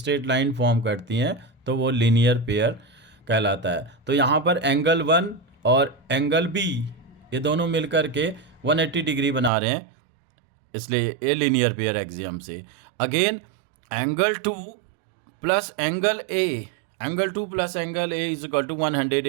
लाइन फॉर्म करती हैं तो वो लीनियर पेयर कहलाता है। तो यहाँ पर एंगल 1 और एंगल B ये दोनों मिलकर के 180 डिग्री बना रहे हैं, इसलिए ये लीनियर पेयर एक्सियम से। Again angle 2 plus angle A is equal to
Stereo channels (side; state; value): left; drops out; at 9.5 s